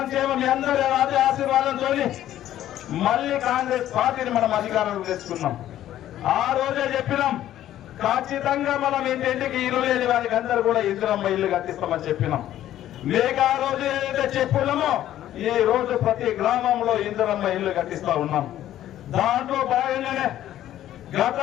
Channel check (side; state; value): right; quieter; 12.5 dB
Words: మీ అందరి ఆశీర్వాదంతో మళ్ళీ కాంగ్రెస్ పార్టీని మనం అధికారంలో తెచ్చుకున్నాం. ఆ రోజే చెప్పినాం ఖచ్చితంగా మనం ఇంటింటికి ఇల్లు లేని వారికి అందరూ కూడా ఇందిరమ్మ ఇల్లు కట్టిస్తామని చెప్పినాం. లేక ఆ రోజు ఏదైతే చెప్పున్నామో ఈ రోజు ప్రతి గ్రామంలో ఇందిరమ్మ ఇల్లు కట్టిస్తా ఉన్నాం. దాంట్లో భాగంగానే